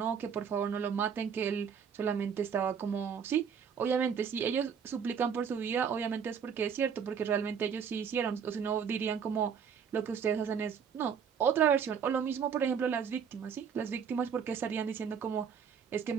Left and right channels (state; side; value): quieter; left; 7.1 dB